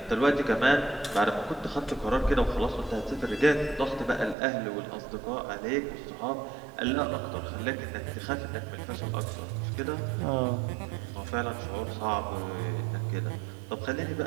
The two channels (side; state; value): left; drops out; at 4.4 s